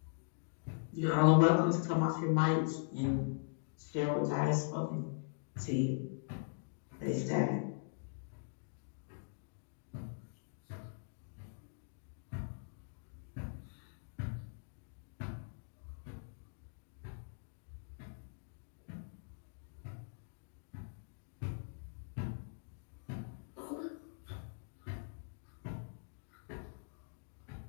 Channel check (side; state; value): right; silent; digital silence